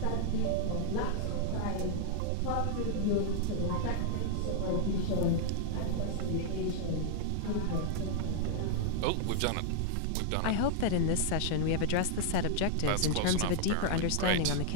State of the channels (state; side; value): different; both; correlation -0.01